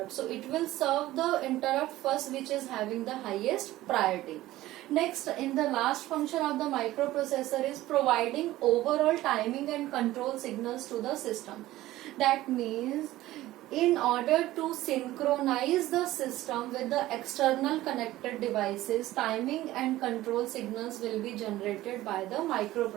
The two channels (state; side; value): quieter; left; 16.1 dB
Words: So it will serve the interrupt first which is having the highest priority. Next, in the last function of the microprocessor is providing overall timing and control signals to the system. That means in order to synchronize the system with the external connected devices, timing and control signals will be generated by the